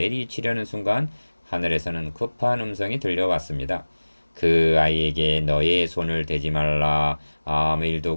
순간 하늘에서는 급한 음성이 들려왔습니다. 그 아이에게 너의 손을 대지 말라. 아무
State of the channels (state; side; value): inverted; both; correlation -1.00